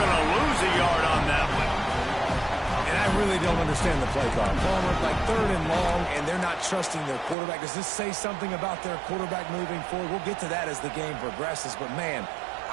to lose a yard on that one. And I really don't understand the play call. Palmer, like 3rd and long, and they're not trusting their quarterback. Does this say something about their quarterback moving forward? We'll get to that as the game progresses. But, man,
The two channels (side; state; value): left; drops out; at 7.4 s